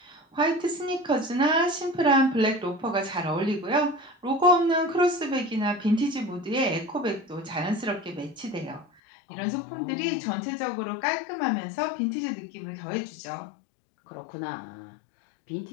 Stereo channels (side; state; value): right; drops out; at 8.8 s